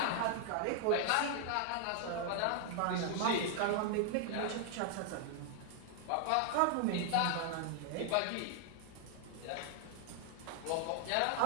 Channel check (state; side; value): different; both; correlation 0.00